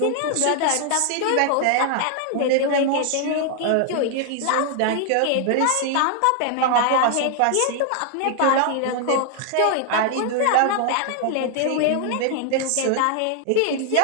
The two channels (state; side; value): different; both; correlation 0.00